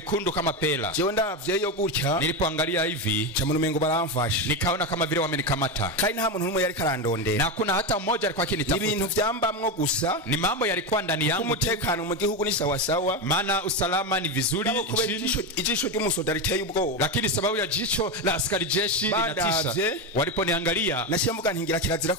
kama pela. jewe ndavyeyo gutya, Nilipoangalia hivi nca mu mengo baramfashe, nikaona kama vile wamenikamata, kandi nta muntu n'umwe yariko arandondera, na kuna hata mmoja alikuwa akinitafuta. ibintu vyambamwo gusa, Ni mambo yalikuwa ndani yangu, umutekano mu gihugu ni sawa sawa, maana usalama ni vizuri kubera nchini, ijisho ry'umusoda riteye ubwoba, lakini sababu ya jicho jicho la askari jeshi linatisha. Badavye. Waliponiangalia nashimuga ntingira kirazira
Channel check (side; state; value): both; normal; correlation 0.13